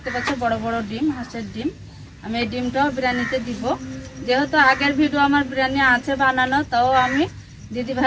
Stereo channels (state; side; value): identical; both; correlation 1.00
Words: পাচ্ছ বড় বড় ডিম, হাঁসের ডিম। আমি এই ডিমটাও বিরিয়ানিতে দিব, যেহেতু আগের ভিডিও আমার বিরিয়ানি আছে বানানো, তাও আমি দিদি